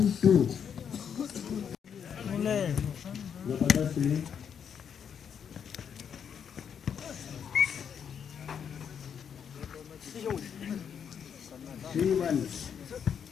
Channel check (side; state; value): right; quieter; 7.7 dB